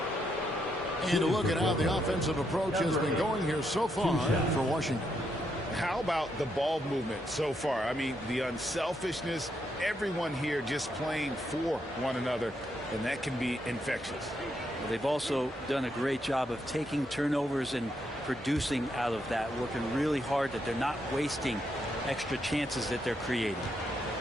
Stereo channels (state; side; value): normal; both; correlation 0.79